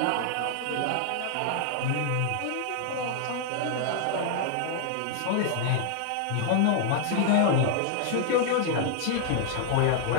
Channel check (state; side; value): different; both; correlation 0.00